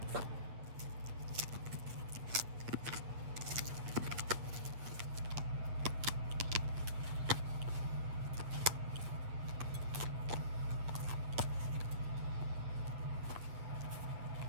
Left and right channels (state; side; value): late; left; 8.8 ms